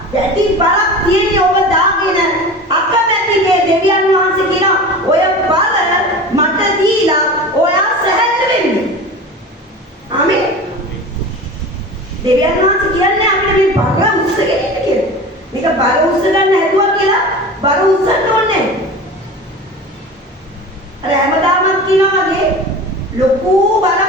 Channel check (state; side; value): normal; both; correlation 0.34